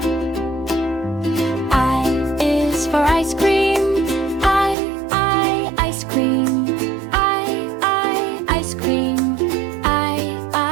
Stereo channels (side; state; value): left; drops out; at 4.8 s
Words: I is for ice cream, I, ice cream. I, ice cream.